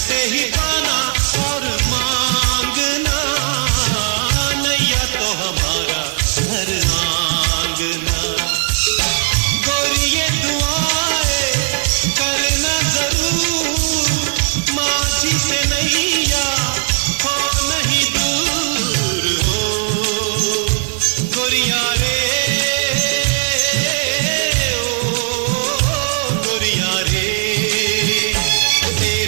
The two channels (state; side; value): silent; left; 68 dB below the other